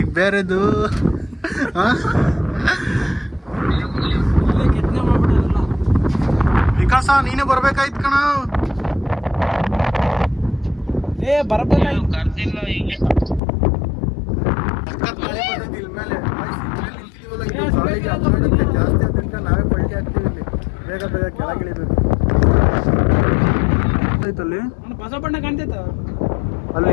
ಬೇರೆದು. ವಿಕಾಸ ನೀನೇ ಬರ್ಬೇಕಾಯ್ತು ಕಣ. ಜಾಸ್ತಿ ಅಂತ ನಾವೇ ಪಲ್ಟಿ ಆಗ್ತೀವಿ ಇಲ್ಲಿ. ಬೇಗ ಬೇಗ ಕೆಳಗಿಳಿಬೇಕು. ಅಲ್ಲಿ ಹೊಸ ಬಣ್ಣ ಕಾಣ್ತೈತ, ಅಲ್ಲಿ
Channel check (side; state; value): right; drops out; at 13.4 s